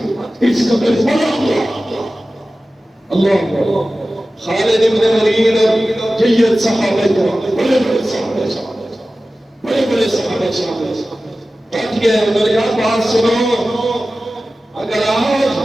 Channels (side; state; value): both; normal; correlation 0.95